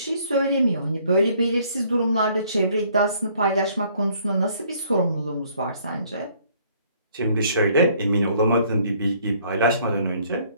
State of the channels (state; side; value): inverted; both; correlation -0.62